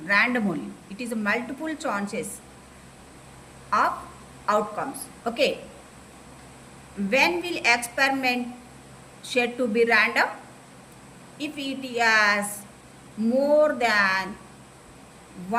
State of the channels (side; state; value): both; identical; correlation 1.00